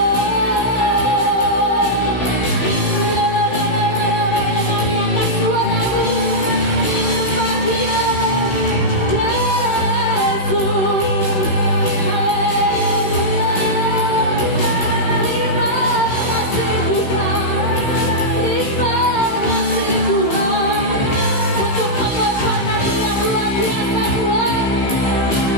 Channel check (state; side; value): late; right; 15 ms